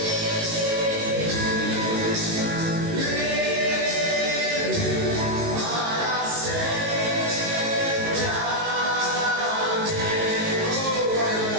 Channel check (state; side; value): late; left; 19 ms